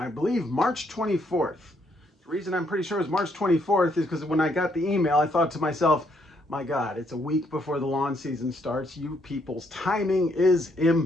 believe, March 24th. The reason I'm pretty sure it was March 24th is because when I got the email, I thought to myself, my God, it's a week before the lawn season starts. You people's timing is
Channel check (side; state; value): both; normal; correlation 0.72